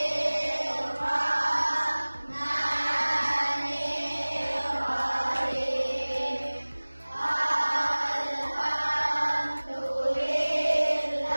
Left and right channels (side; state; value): both; inverted; correlation -1.00